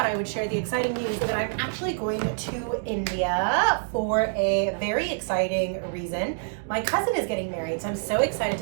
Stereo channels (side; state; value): left; silent; digital silence